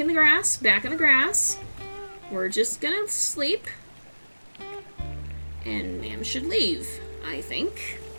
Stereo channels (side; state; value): both; inverted; correlation -1.00